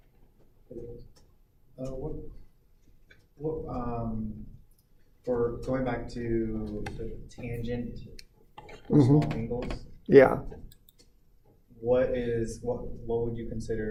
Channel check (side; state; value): both; identical; correlation 1.00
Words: For going back to the tangent for small angles, yeah. what would you